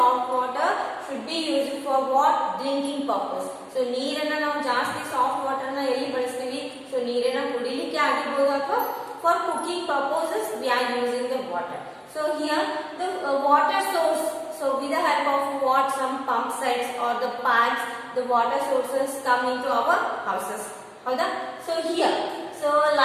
water should be used for what? Drinking purpose. So ನೀರನ್ನ ನಾವು ಜಾಸ್ತಿ soft water ನ ಎಲ್ಲಿ ಬಳಸ್ತೀವಿ? So ನೀರನ್ನ ಕುಡಿಲಿಕ್ಕೆ ಆಗಿರಬಹುದು ಅಥವಾ for cooking purposes we are using the water. So here the water source. So with the help of what? Some pump sets or the pipes, the water sources come into our houses. Howda? So here, so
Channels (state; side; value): identical; both; correlation 1.00